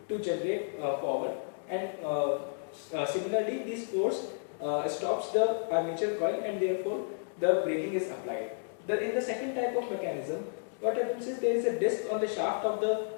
to generate power, and similarly this force stops the armature coil, and therefore the braking is applied. In the second type of mechanism, what happens is there is a disc on the shaft of the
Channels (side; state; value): right; silent; digital silence